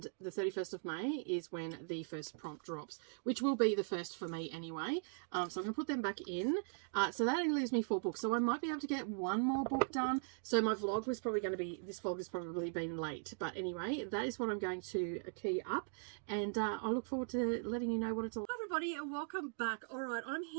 the 31st of May is when the first prompt drops, which will be the first for me anyway. So I'm going to put them back in. So that only leaves me 4 books. So I might be able to get one more book done. So my vlog was probably going to be, this vlog has probably been late. But anyway, that is what I'm going to key up. And I look forward to letting you know what it's all. Hi everybody and welcome back. All right, I'm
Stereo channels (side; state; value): left; silent; digital silence